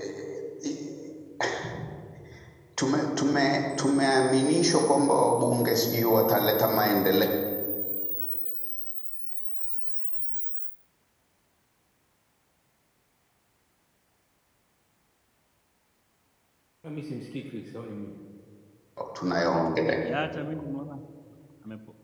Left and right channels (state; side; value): identical; both; correlation 1.00